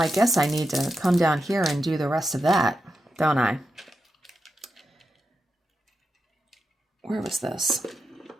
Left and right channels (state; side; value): normal; both; correlation 0.87